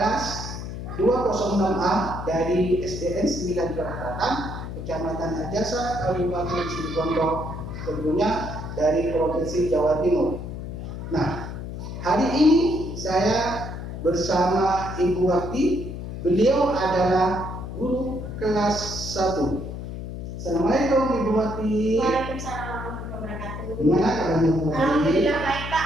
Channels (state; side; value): noise; left; hum, 7 dB below the sound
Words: kelas 206A dari SDN 9 Kelahatan, Kecamatan Ajasa, Kabupaten Situbondo, tentunya dari Provinsi Jawa Timur. Nah, hari ini saya bersama Ibu Wati. Beliau adalah guru kelas 1. Assalamualaikum Ibu Wati. Waalaikumsalam warahmatullahi wabarakatuh. Gimana kabarnya Bu Wati? Alhamdulillah baik Pak.